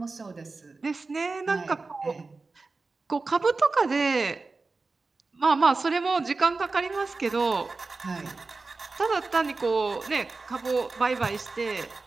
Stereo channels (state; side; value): quieter; left; 3.8 dB